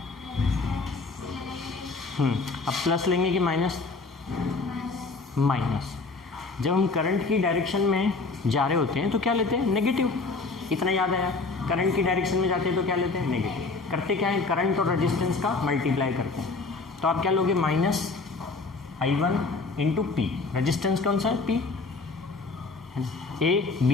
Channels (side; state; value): right; quieter; 3.8 dB